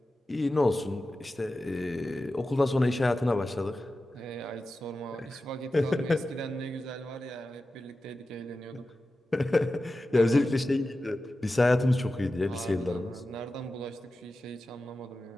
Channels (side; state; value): both; normal; correlation 0.93